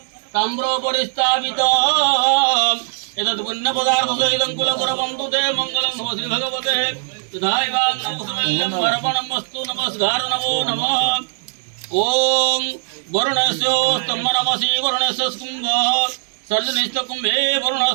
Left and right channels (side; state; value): left; silent; digital silence